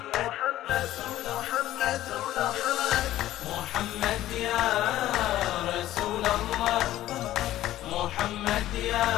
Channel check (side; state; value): right; quieter; 14.2 dB